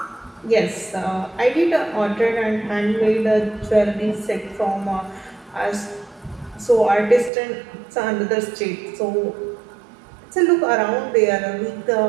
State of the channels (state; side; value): drops out; left; at 7.3 s